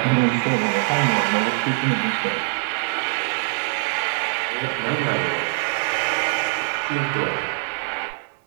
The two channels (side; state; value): left; silent; digital silence